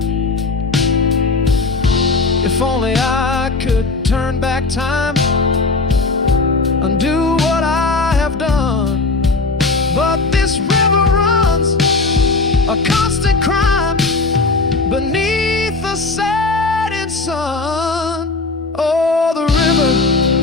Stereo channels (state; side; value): quieter; right; 3.6 dB